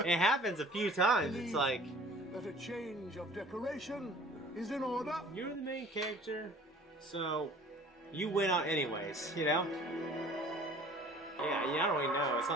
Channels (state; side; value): normal; both; correlation 0.49